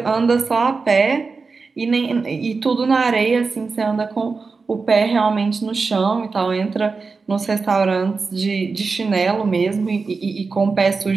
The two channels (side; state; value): left; quieter; 4.5 dB